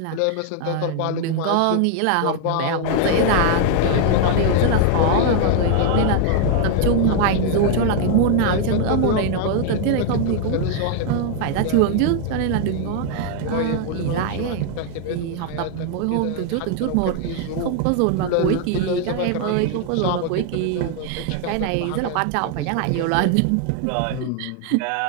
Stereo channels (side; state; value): both; different; correlation 0.00